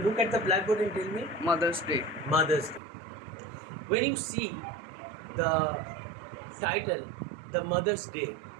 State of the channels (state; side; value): drops out; left; at 2.8 s